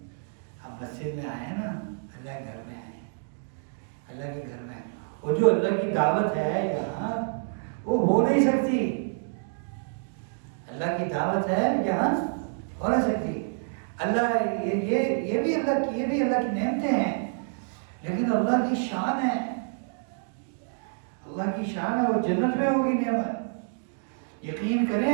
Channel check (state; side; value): silent; left; digital silence